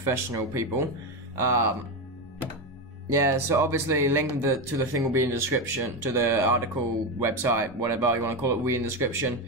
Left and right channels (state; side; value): normal; both; correlation 0.14